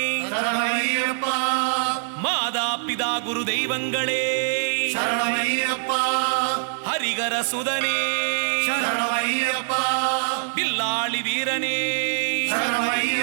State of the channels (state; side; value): silent; left; digital silence